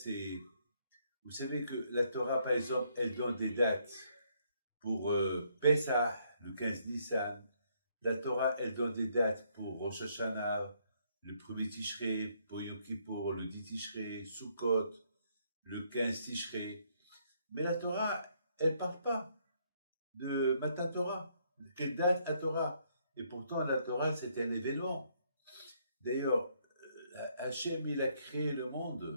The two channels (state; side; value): inverted; both; correlation -0.70